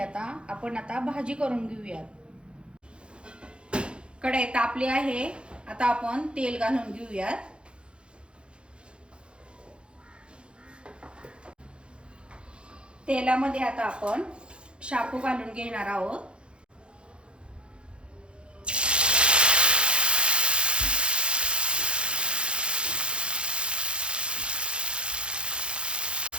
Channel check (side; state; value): left; late; 0.056 ms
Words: आता आपण भाजी करून घेऊयात। कढई तापली आहे। आता आपण तेल घालून घेऊयात। तेलामध्ये आता आपण शेपू घालून घेणार आहोत।